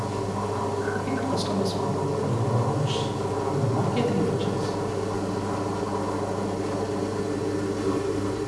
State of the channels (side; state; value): both; identical; correlation 1.00